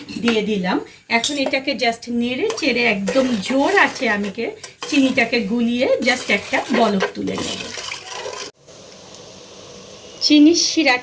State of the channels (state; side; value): identical; both; correlation 1.00